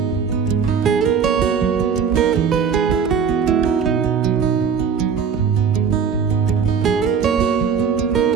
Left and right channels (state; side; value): quieter; left; 6.6 dB